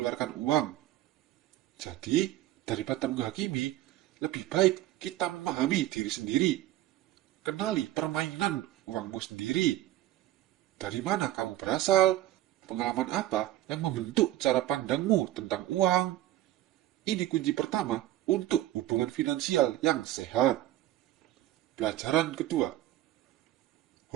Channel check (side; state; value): left; quieter; 14.7 dB